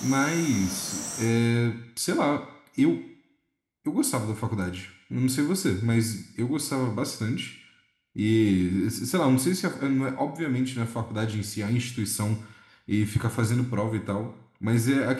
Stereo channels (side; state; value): both; identical; correlation 1.00